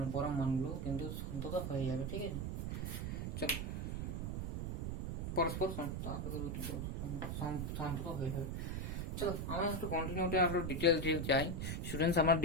পরম মানগুলো কিন্তু সন্তত হয়ে যাবে। ঠিক আছে, চলো, পরস্পর সন্তত হয়ে যাবে। চলো, আমরা একটু কন্টিনিউটি আরো ডিটেলস যাই। স্টুডেন্টস, আমরা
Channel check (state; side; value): noise; right; rumble, 2 dB below the sound